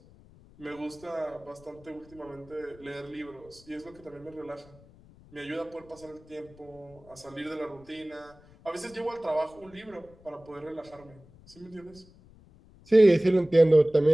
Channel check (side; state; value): left; noise; rumble, 24 dB below the sound